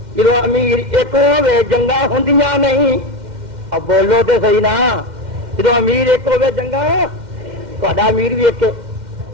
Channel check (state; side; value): late; left; 2.1 ms